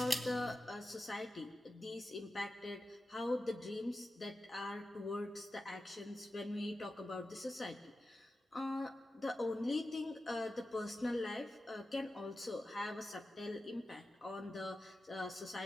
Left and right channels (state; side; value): normal; both; correlation 0.92